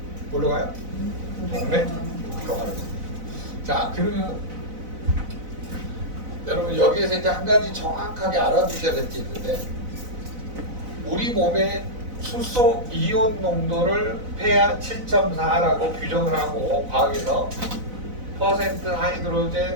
뭘로 가요? 동맥 들어가는 겁니다. 자, 그러면 여러분 여기에서 이제 한 가지 정확하게 알아두셔야 될 게 있는데 우리 몸의 수소 이온 농도를 폐하 7.4라고 규정을 하고 과학에서 퍼센트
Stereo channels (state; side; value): late; left; 4.0 ms